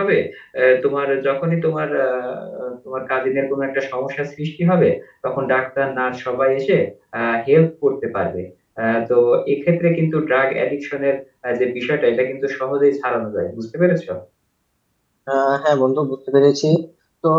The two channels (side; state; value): both; identical; correlation 1.00